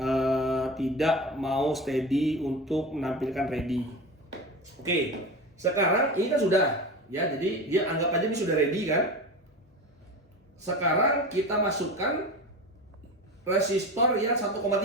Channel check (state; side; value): normal; both; correlation 0.28